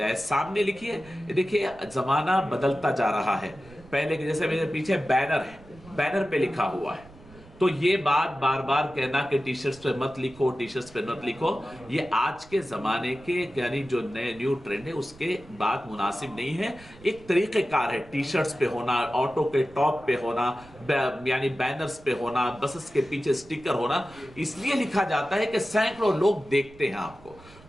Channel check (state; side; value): noise; right; rumble, 22 dB below the sound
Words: सामने लिखिए। देखिए, ज़माना बदलता जा रहा है। पहले के जैसे मेरे पीछे बैनर है, बैनर पे लिखा हुआ है, तो ये बात बार बार कहना कि टी शर्ट्स पे मत लिखो, टी शर्ट्स पे मत लिखो, ये आज के ज़माने के यानी जो नए न्यू ट्रेंड है उसके बात मुनासिब नहीं है। एक तरीक़ेकार है टी शर्ट्स पे होना, ऑटो के टॉप पे होना, यानी बैनर्स पे होना, बसेस के पीछे स्टिकर होना, इसलिए लिखा जाता है कि सैकड़ों लोग देखते हैं आपको।